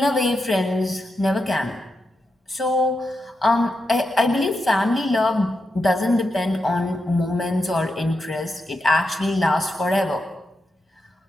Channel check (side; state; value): both; normal; correlation 0.87